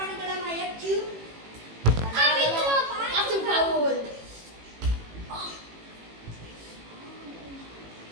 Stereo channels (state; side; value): late; left; 18 ms